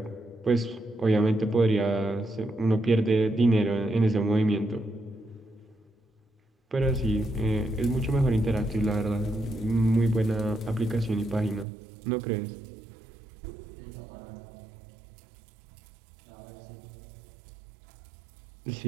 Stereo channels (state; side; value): drops out; left; at 11.7 s